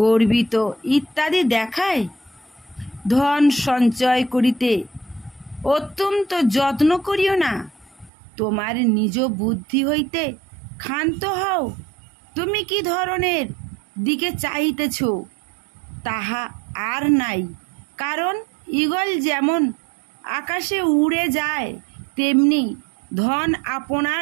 গর্বিত ইত্যাদি দেখায়? ধন সঞ্চয় করিতে অত্যন্ত যত্ন করিও না, তোমার নিজ বুদ্ধি হইতে ক্ষান্ত হও। তুমি কি ধরনের দিকে চাহিতেছ তাহা আর নাই, কারণ ঈগল যেমন আকাশে উড়ে যায় তেমনি ধন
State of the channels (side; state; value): left; drops out; at 8.1 s